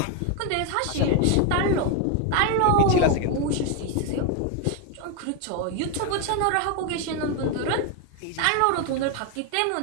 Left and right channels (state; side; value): different; both; correlation 0.01